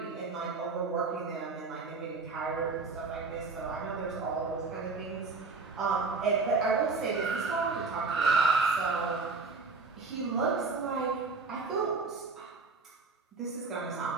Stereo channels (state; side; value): quieter; left; 4.2 dB